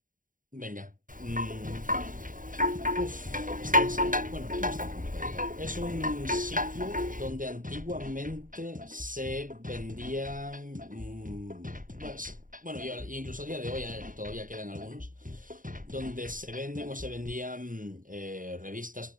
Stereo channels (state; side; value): late; left; 0.39 ms